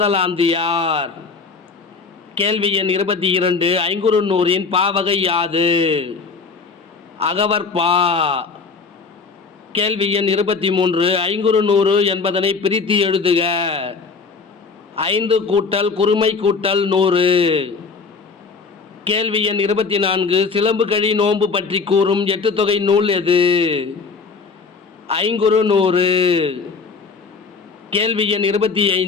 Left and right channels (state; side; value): quieter; right; 4.8 dB